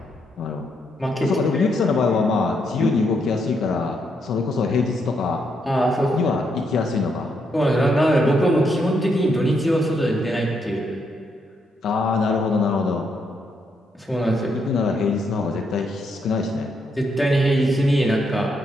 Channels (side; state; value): both; normal; correlation 0.77